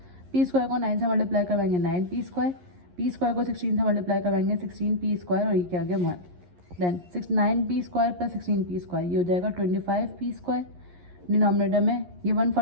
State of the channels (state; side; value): late; left; 11 ms